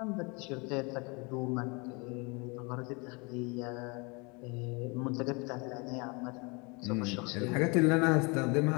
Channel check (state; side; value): quieter; right; 29.8 dB